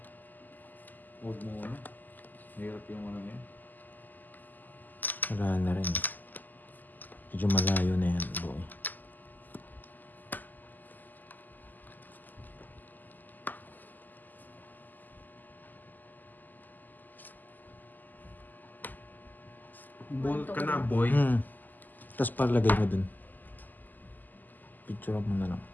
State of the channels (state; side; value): late; right; 0.085 ms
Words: Huwag muna. Mahirap yung ano yan. Wala na rin. Medyo malayo na yan, boy. Bolt ka na, boy. Tapos palagay mo dun. Picture mo na lang.